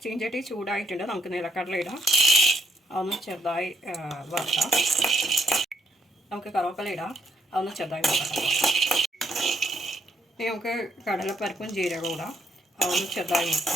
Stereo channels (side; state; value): both; normal; correlation 0.72